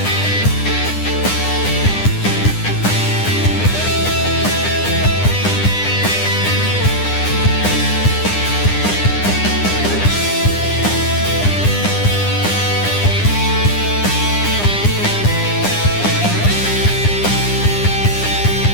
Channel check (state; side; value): late; right; 9.9 ms